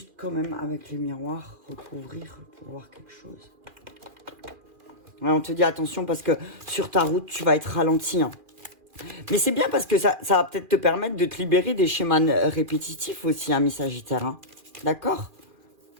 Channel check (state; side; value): late; left; 2.4 ms